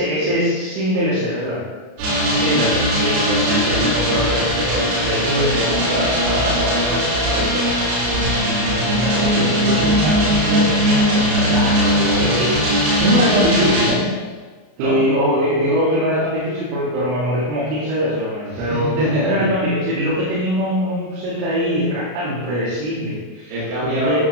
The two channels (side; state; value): left; late; 33 ms